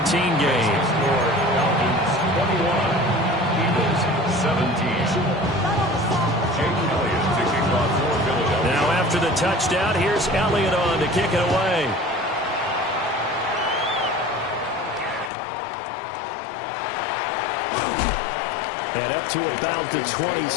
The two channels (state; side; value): drops out; right; at 15.3 s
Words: game. 21, Eagles 17. Now after the touchdown, here's Elliott on to kick it away. And up to about the